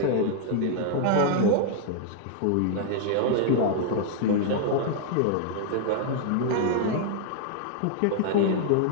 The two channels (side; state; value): both; different; correlation 0.00